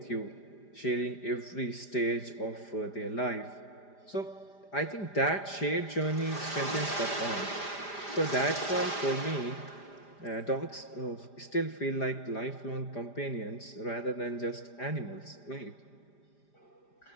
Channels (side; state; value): right; late; 5.0 ms